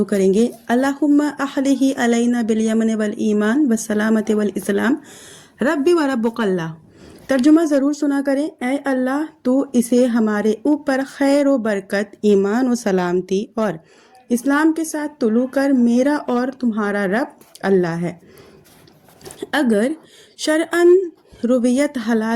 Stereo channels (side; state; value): both; identical; correlation 1.00